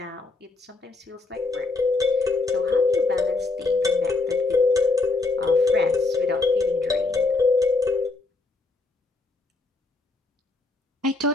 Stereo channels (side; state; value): right; quieter; 3.5 dB